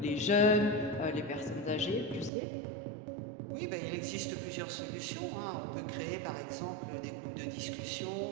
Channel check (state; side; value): drops out; left; at 2.3 s